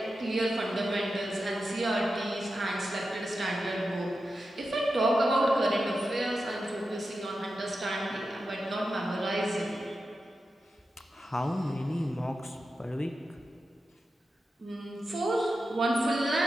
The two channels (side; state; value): both; normal; correlation 0.91